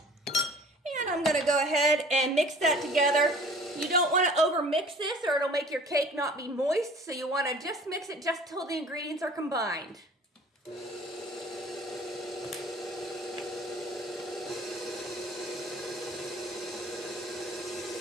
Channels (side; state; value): both; normal; correlation 0.48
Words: I'm going to go ahead and mix that together. You don't want to over mix this or it'll make your cake not be moist, so you want to just mix it just till the ingredients are combined.